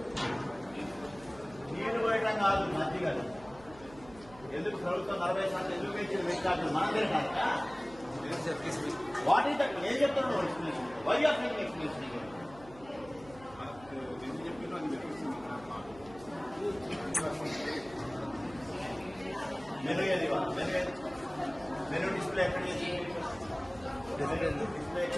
నీళ్లు పోయటం కాదు మజ్జిగలు. ఎందుకు ప్రభుత్వం 40% ఎందుకు పెంచింది? పెట్టాలి మనం తిరగాక. What is that? ఏం చెప్తున్నావు explanation? Why are making explanation? Menu ఏది? మెను ఏది? మెను డిస్ప్లే ఎక్కడ చేసి? డిస్ప్లే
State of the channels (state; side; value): noise; right; hum, 21 dB below the sound